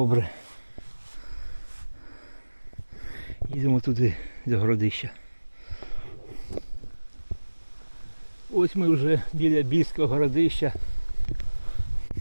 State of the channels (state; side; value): inverted; both; correlation -1.00